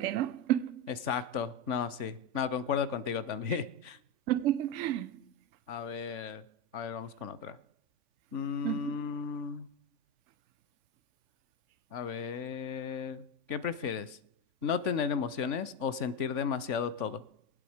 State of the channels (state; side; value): late; left; 3.5 ms